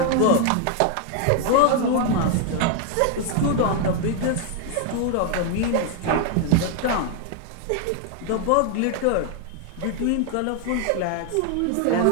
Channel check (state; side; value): different; both; correlation 0.00